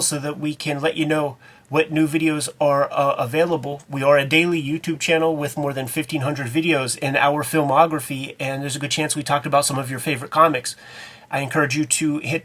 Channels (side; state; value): both; identical; correlation 1.00